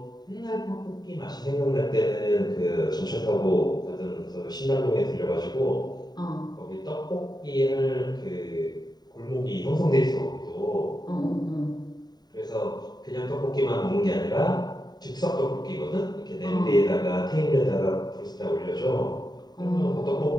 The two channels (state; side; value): late; right; 0.20 ms